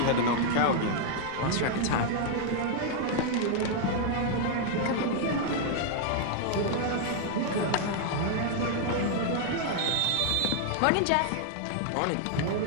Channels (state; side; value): different; both; correlation 0.00